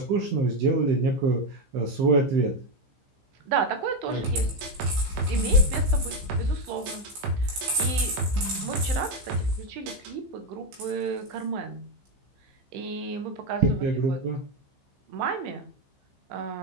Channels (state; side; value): late; left; 15 ms